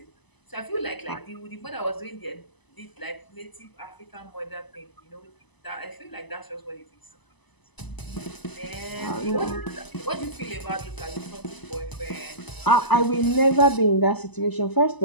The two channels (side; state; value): right; late; 1.0 ms